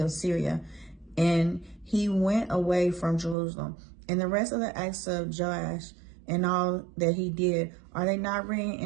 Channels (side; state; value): left; drops out; at 3.4 s